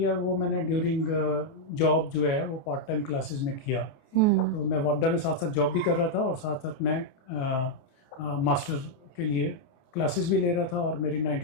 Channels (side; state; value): right; late; 28 ms